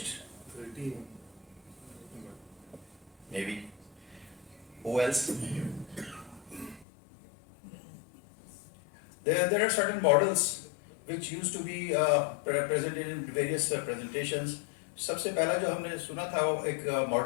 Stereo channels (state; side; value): drops out; right; at 6.9 s